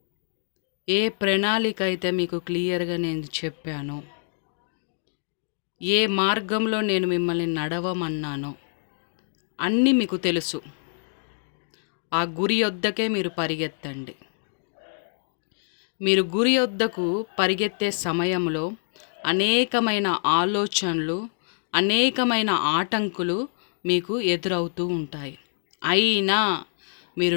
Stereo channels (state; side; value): silent; right; digital silence